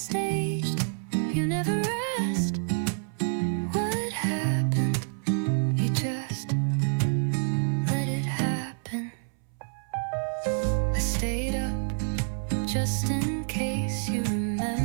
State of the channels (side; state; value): left; silent; 59 dB below the other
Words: You never asked what happened. You just let it happen. I stayed up just in case you